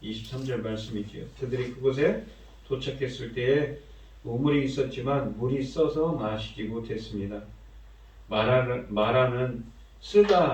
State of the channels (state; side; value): identical; both; correlation 1.00